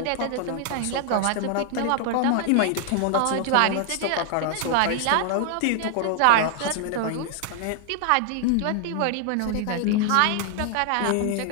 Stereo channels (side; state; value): both; different; correlation 0.00